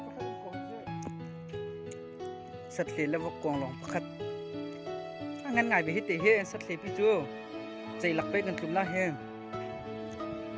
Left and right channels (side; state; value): both; identical; correlation 1.00